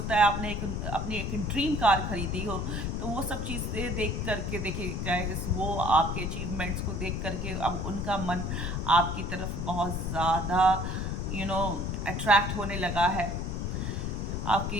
है आपने अपनी एक ड्रीम कार खरीदी हो, तो वो सब चीज़ें देख करके देखिए गाइस, वो आपके अचीवमेंट्स को देख करके अब उनका मन आपकी तरफ बहुत ज़्यादा अट्रैक्ट होने लगा है।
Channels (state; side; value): noise; left; rumble, 2 dB below the sound